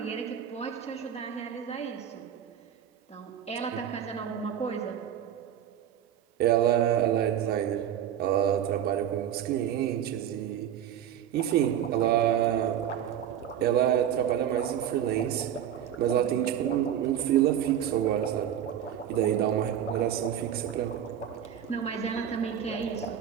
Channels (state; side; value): quieter; left; 9.8 dB